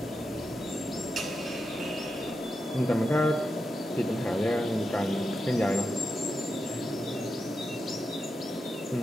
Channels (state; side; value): normal; both; correlation 0.88